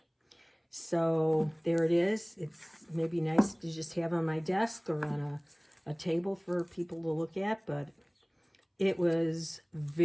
So there it is. It's maybe nice to just have on my desk or on a table for people to look at, but it was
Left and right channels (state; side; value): identical; both; correlation 1.00